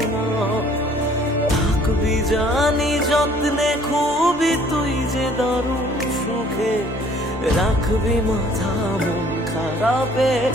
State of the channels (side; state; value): both; normal; correlation 0.57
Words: না। থাকবি জানি যত্নে খুবই তুই যে দারুণ সুখে, রাখবি মাথা মন খারাপে